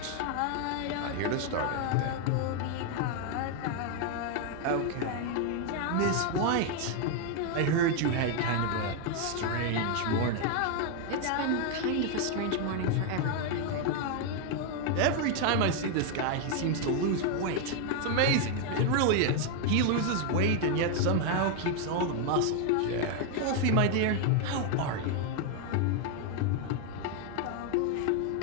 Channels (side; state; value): both; different; correlation 0.01